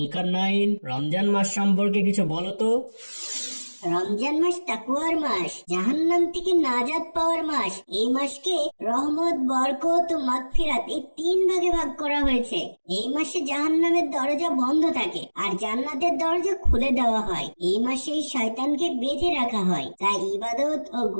রমজান মাস সম্পর্কে কিছু বলো তো। রমজান মাস তাকওয়ার মাস, জাহান্নাম থেকে নাজাত পাওয়ার মাস। এই মাসকে রহমত, বরকত ও মাগফিরাত এই তিন ভাগে ভাগ করা হয়েছে। এই মাসে জাহান্নামের দরজা বন্ধ থাকে আর জান্নাতের দরজা খুলে দেওয়া হয়। এই মাসে শয়তানকে বেঁধে রাখা হয়, তাই ইবাদত ও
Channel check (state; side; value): inverted; both; correlation -1.00